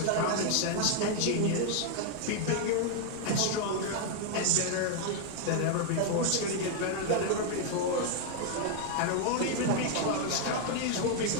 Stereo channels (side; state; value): both; different; correlation 0.00